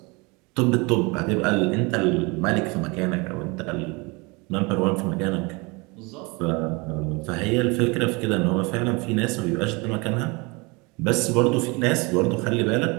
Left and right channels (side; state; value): left; quieter; 27.5 dB